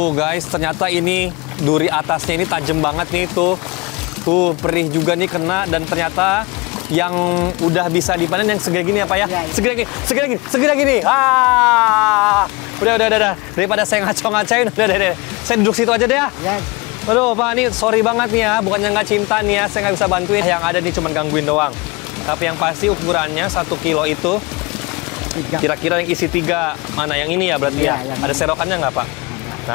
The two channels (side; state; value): right; quieter; 25.9 dB